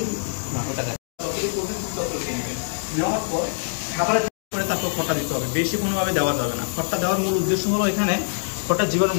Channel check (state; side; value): silent; right; digital silence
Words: না, ওটা দেখ নেওয়ার পর খাবারের করে তারপর খড়টা দিতে হবে, বেশি কোনোভাবে দেওয়া যাবে না। খড়টা দেওয়ার মূল উদ্দেশ্য হলো এখানে খড়টা জীবাণু